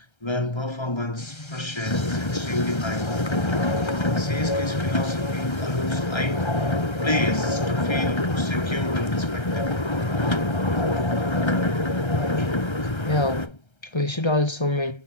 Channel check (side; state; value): right; late; 1.3 ms